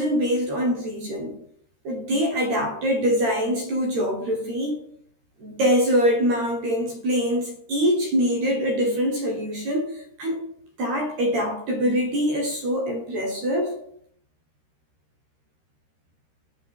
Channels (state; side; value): late; left; 13 ms